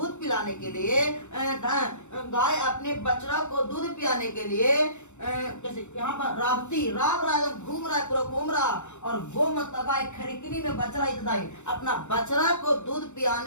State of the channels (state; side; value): late; right; 0.83 ms